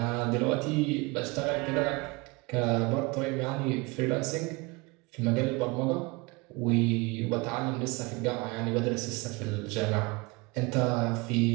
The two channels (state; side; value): quieter; left; 26.0 dB